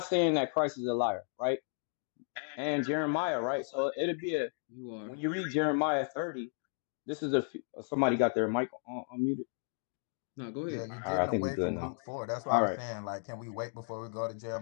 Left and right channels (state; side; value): silent; right; digital silence